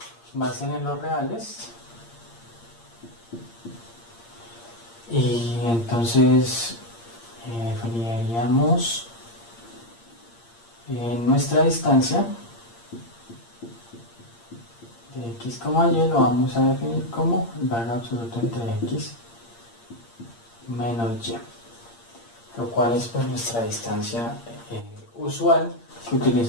va a ser en los reales, y entonces definiríamos nuestra distancia de x, y lo vamos a definir como el valor absoluto entre x menos y, lo cual es pues nuestra distancia usual que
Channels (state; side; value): late; right; 8.7 ms